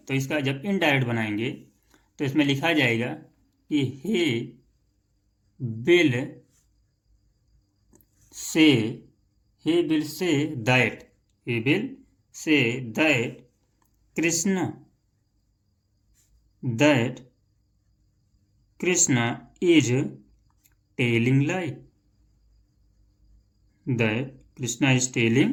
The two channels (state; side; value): identical; both; correlation 1.00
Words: इसका जब इनडायरेक्ट बनाएंगे तो इसमें लिखा जाएगा कि he will say that Krishna is